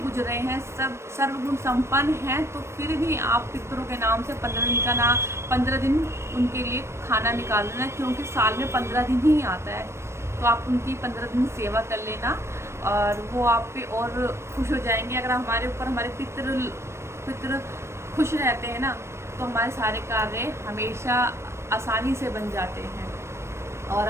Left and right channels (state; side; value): late; left; 0.13 ms